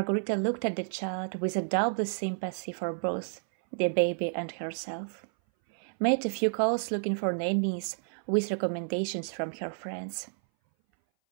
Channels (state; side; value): silent; left; 57 dB below the other